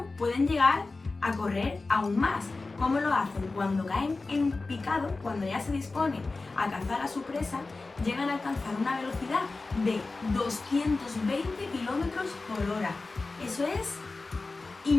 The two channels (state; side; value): quieter; right; 3.6 dB